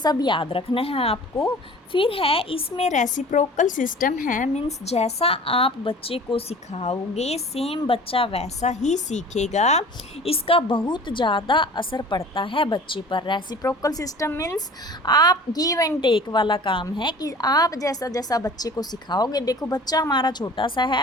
याद रखना है आपको। फिर है इसमें रेसिप्रोकल सिस्टम है, मीन्स जैसा आप बच्चे को सिखाओगे सेम बच्चा वैसा ही सीखेगा। इसका बहुत ज़्यादा असर पड़ता है बच्चे पर। रेसिप्रोकल सिस्टम मीन्स आप गिव एंड टेक वाला काम है कि आप जैसा जैसा बच्चे को सिखाओगे, देखो बच्चा हमारा छोटा सा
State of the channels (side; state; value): both; normal; correlation 0.44